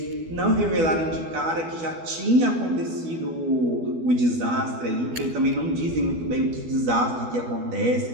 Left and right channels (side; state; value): left; late; 12 ms